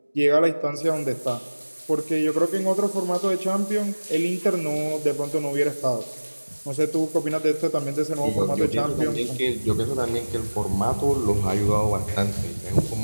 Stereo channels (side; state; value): both; inverted; correlation -1.00